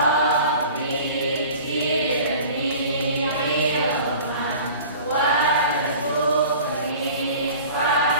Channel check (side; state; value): both; inverted; correlation -0.42